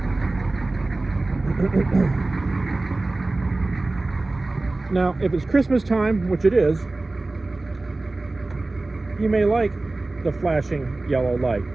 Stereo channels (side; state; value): left; quieter; 3.1 dB